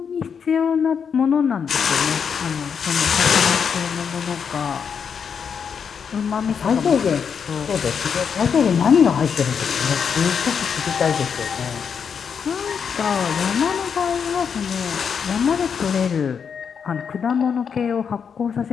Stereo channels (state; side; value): quieter; right; 6.8 dB